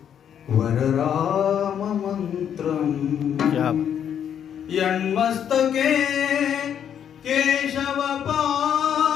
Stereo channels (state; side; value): quieter; right; 8.9 dB